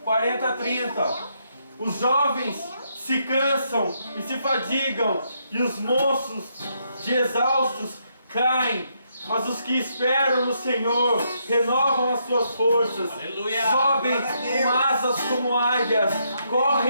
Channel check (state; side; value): inverted; both; correlation -0.76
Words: 40:30. Os jovens se cansam e se fadigam, e os moços de exaustos caem Mas os que esperam no Senhor renovam as suas forças, Aleluia. sobem com asas como águias,